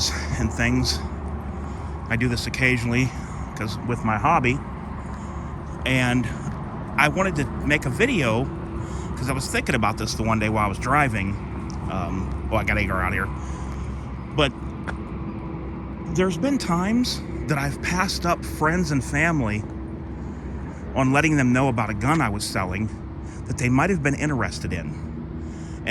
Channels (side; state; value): both; identical; correlation 1.00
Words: and things. I do this occasionally because with my hobby, and I wanted to make a video because I was thinking about this the one day while I was driving. I got to get out here. But there's been times that I've passed up friends and family on letting them know about a gun I was selling that they might have been interested in.